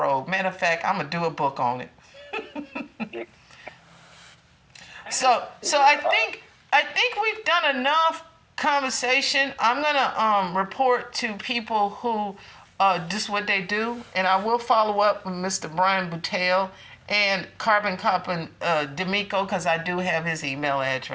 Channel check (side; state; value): both; identical; correlation 1.00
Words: Matter of fact, I'm gonna do a book on it. So I think we've done enough conversation. I'm gonna report to people who just what they do, and I will follow up with Mr. Brian Boutelle and Carbon Copper D'Amico, because I do have his email